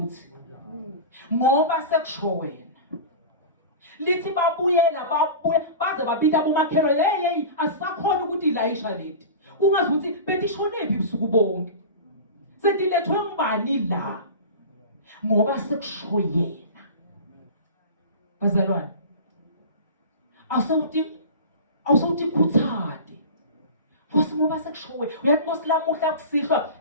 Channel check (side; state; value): both; inverted; correlation -0.32